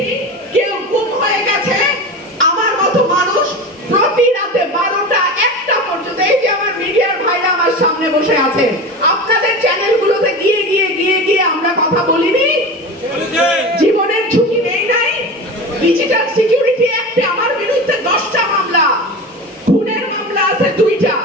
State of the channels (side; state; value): both; normal; correlation 0.29